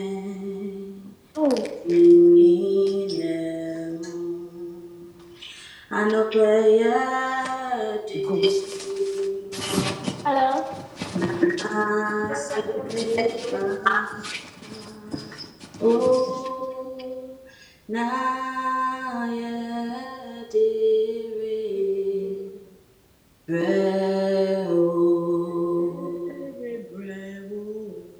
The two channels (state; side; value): identical; both; correlation 1.00